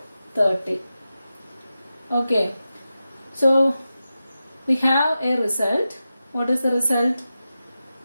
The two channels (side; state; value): both; inverted; correlation -0.92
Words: 30. Okay, so we have a result. What is the result?